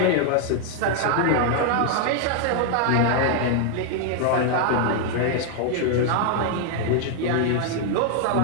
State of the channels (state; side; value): different; both; correlation 0.00